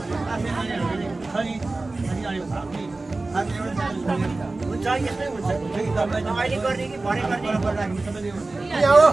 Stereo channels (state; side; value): quieter; left; 3.3 dB